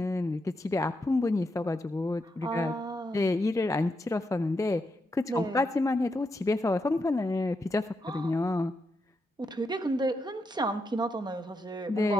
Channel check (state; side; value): normal; both; correlation 0.83